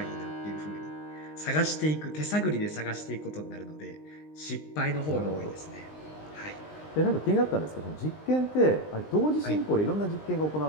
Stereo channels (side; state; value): right; late; 19 ms